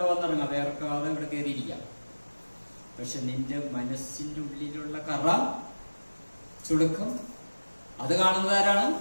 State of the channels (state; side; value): inverted; both; correlation -1.00